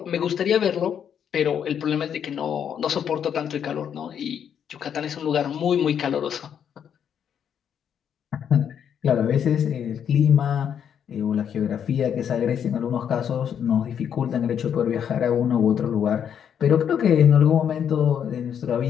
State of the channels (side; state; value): right; quieter; 8.4 dB